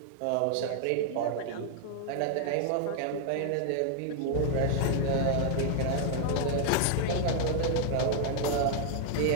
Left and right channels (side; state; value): both; different; correlation 0.00